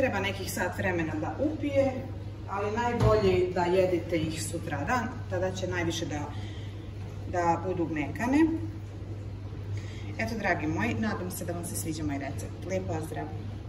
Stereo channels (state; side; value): identical; both; correlation 1.00